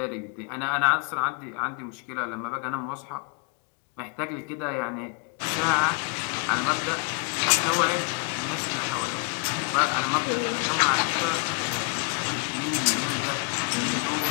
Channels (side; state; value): right; quieter; 38.6 dB